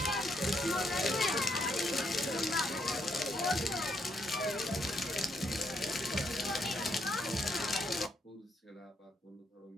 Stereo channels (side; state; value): both; normal; correlation 0.75